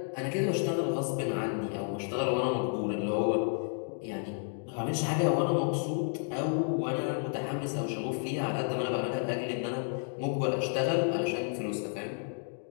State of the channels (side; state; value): right; silent; 57 dB below the other